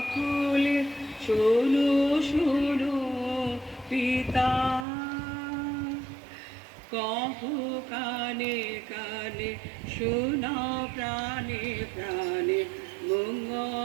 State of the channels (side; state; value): left; drops out; at 4.9 s